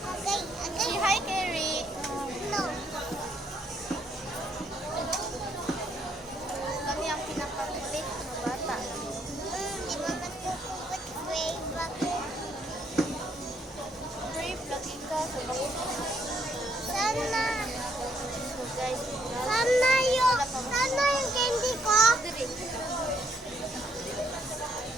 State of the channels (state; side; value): normal; both; correlation 0.71